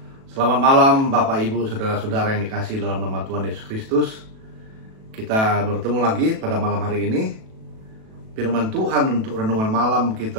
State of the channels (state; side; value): late; left; 37 ms